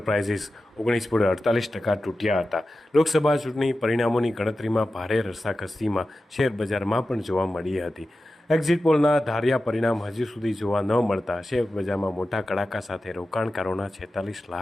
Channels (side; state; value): both; normal; correlation 0.93